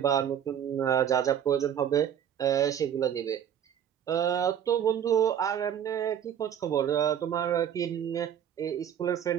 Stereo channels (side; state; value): left; quieter; 9.3 dB